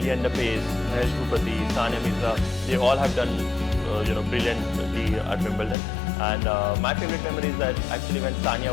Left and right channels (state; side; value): drops out; right; at 5.8 s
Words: Paes, Mahesh Bhupathi, Sania Mirza, they all have done brilliantly at Wimbledon. And my favorite memory is that actually when